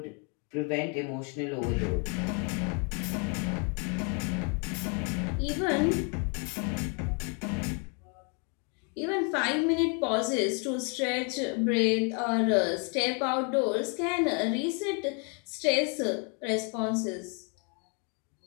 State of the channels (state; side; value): quieter; right; 36.6 dB